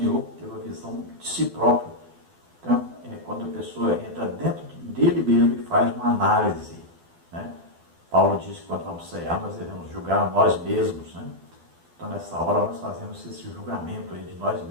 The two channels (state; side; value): late; left; 12 ms